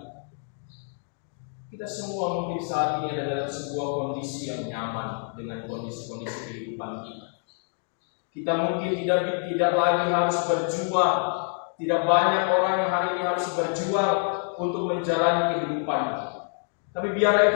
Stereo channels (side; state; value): right; silent; 56 dB below the other